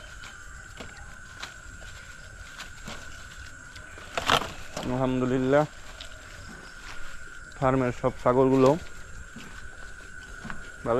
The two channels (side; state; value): both; identical; correlation 1.00